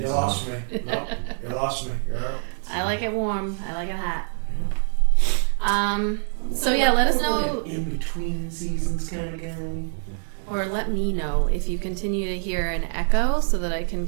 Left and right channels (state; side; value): silent; left; digital silence